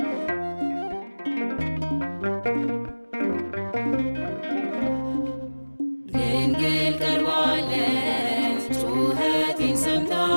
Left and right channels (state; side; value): inverted; both; correlation -1.00